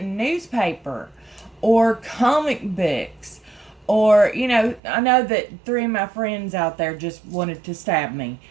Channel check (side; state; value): left; drops out; at 4.8 s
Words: Or comic books. Or, I know that 3 of my friends out there just wanted to stab me